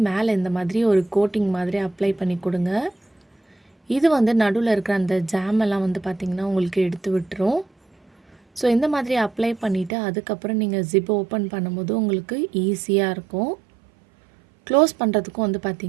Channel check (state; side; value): drops out; left; at 9.9 s